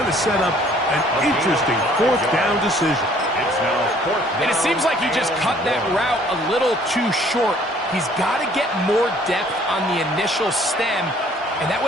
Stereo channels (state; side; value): normal; both; correlation 0.58